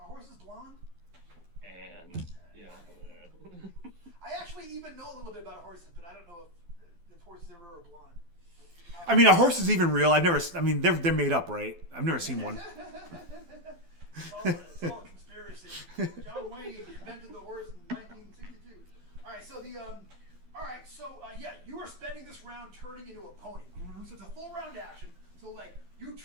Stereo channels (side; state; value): left; late; 12 ms